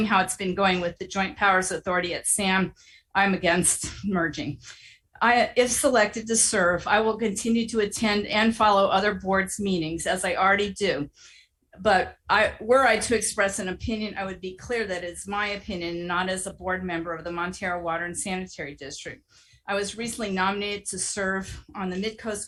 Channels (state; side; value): identical; both; correlation 1.00